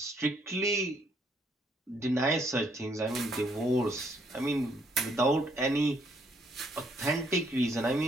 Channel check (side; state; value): both; normal; correlation 0.69